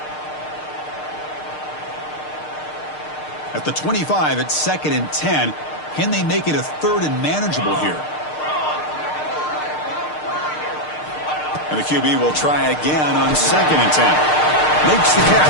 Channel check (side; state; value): right; late; 6.6 ms